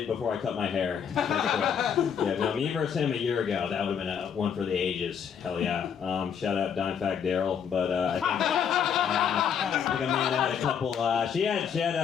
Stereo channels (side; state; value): right; quieter; 7.7 dB